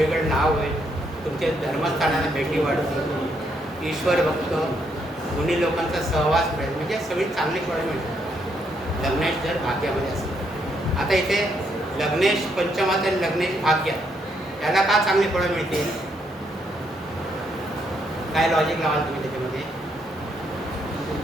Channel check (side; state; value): both; normal; correlation 0.75